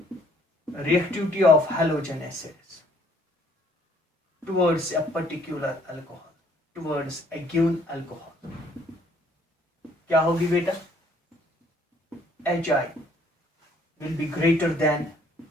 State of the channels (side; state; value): both; normal; correlation 0.62